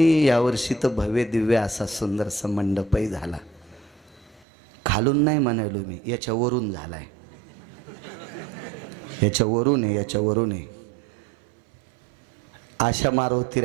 यावर्षी तर भव्य दिव्य असा सुंदरसा मंडपही झाला. खालून नाही म्हणालो मी, याच्यावरून झालाय. याच्यावरून आहे. अशा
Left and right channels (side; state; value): left; drops out; at 4.5 s